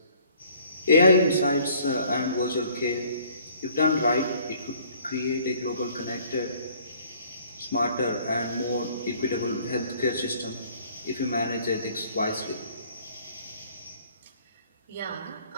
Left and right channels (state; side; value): inverted; both; correlation -0.58